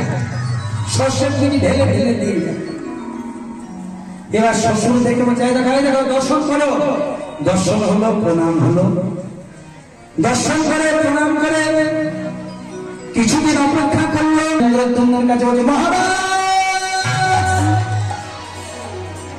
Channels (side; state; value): both; identical; correlation 1.00